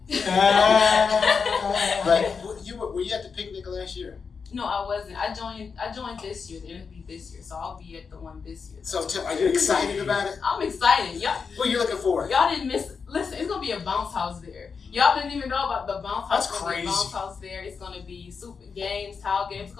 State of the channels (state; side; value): quieter; right; 5.5 dB